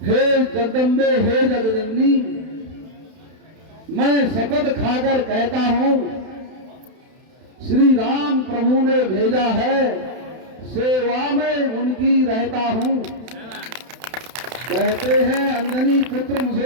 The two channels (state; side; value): late; left; 31 ms